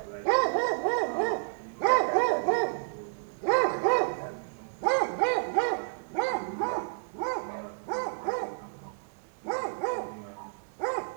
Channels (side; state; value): left; silent; digital silence